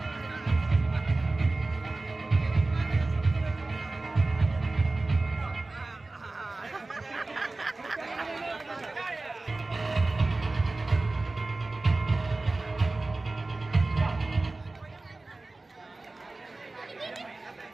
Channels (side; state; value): left; quieter; 3.2 dB